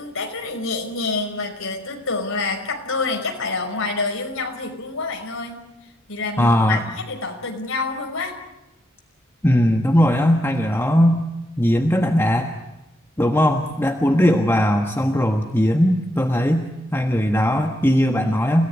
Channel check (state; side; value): normal; both; correlation 0.76